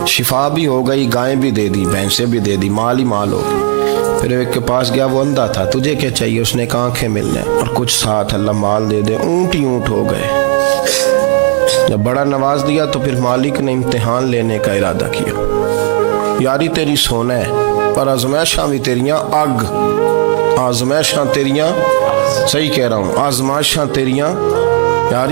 शिफा भी हो गई, गायें भी दे दी, भैंसें भी दे दी, माल ही माल हो गया। फिर एक के पास गया, वो अंधा था, तुझे क्या चाहिए? उसने कहा आंखें मिलने और कुछ साथ अल्लाह माल दे दे। ऊँट ही ऊँट हो गए। जब बड़ा नवाज दिया तो फिर मालिक ने इम्तिहान लेने का इरादा किया। यारी तेरी सोना है पर आजमाइशां भी तेरियां अग, आजमाइशां तेरियां, सही कह रहा हूँ, आजमाइशां तेरियां,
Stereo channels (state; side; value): silent; left; digital silence